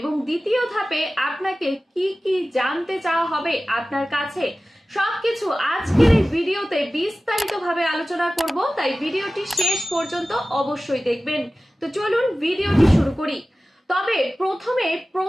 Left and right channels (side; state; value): both; normal; correlation 0.96